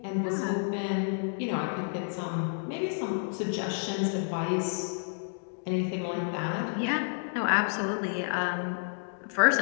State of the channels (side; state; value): right; silent; digital silence